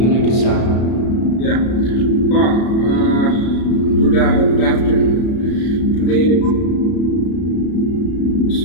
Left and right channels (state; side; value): late; right; 33 ms